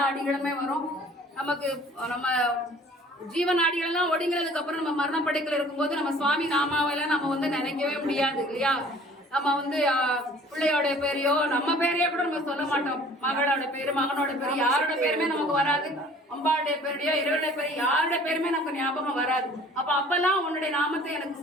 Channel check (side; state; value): both; normal; correlation 0.51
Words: அடிகளுமே வரும். நமக்கு நம்ம ஜீவநாடிகள் எல்லாம் ஒடுங்கிறதுக்கு அப்புறம் நம்ம மரணப்படைக்கல இருக்கும்போது நம்ம சுவாமி நாமாவெல்லாம் நம்ம நினைக்கவே முடியாது இல்லையா. நம்ம பிள்ளையோட பேரையோ நம்ம பேரையோ கூட நம்ம சொல்ல மாட்டோம். மகளோட பேரு மகனோட பேரு யாரோட பேருமே நமக்கு வராது. அம்பாளுடைய பேரையோ இறைவனுடைய பேரு யாரோட பேருமே நமக்கு ஞாபகம் வராது. அப்பெல்லாம் உன்னுடைய நாமத்தை எனக்கு